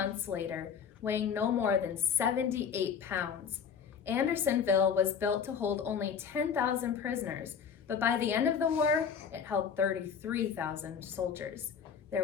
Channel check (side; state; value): right; quieter; 6.9 dB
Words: later, weighing no more than 78 pounds. Andersonville was built to hold only 10,000 prisoners, but by the end of the war, it held 33,000 soldiers.